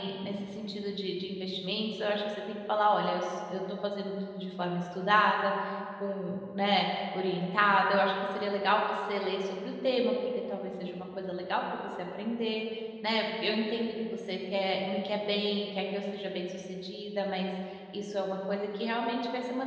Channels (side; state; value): both; identical; correlation 1.00